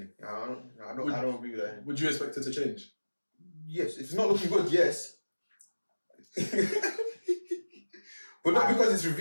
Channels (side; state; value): both; inverted; correlation -1.00